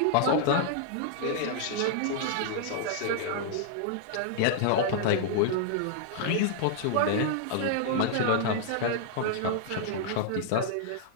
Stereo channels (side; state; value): both; different; correlation -0.01